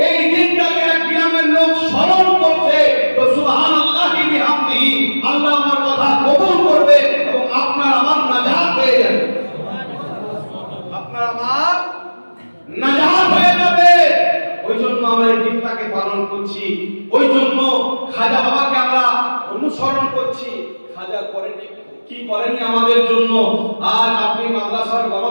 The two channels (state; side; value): inverted; both; correlation -1.00